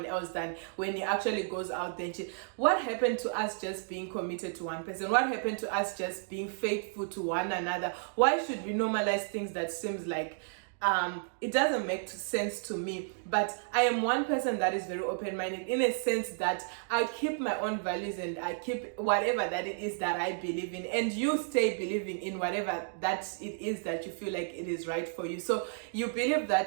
else, than when he actually goes out there and cheat. What happened to us just being committed to one person? What happened to us just being faithful to one another? Why should we normalize things that seems like it doesn't make sense to me? But I am one person that is very open-minded, in a sense that I keep my own values and I keep whatever that it is that I believe in, and you stay believing in whatever that it is that you feel like it is right for you. So you believe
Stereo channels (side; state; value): left; silent; digital silence